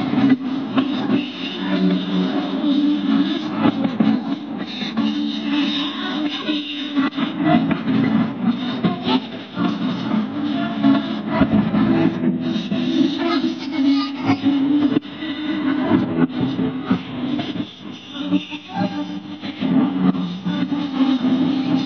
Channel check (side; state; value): both; identical; correlation 1.00